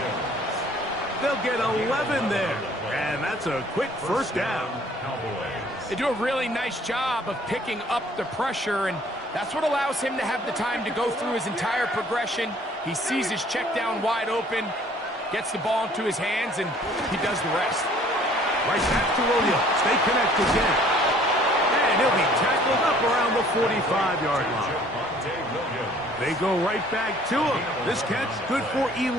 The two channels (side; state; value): both; normal; correlation 0.56